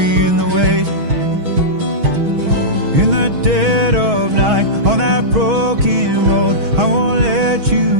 the weight in the dead of night on that broken road. I won't let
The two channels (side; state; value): left; late; 6.3 ms